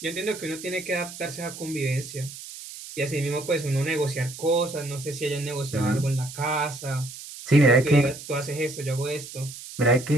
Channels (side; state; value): right; noise; hiss, 13 dB below the sound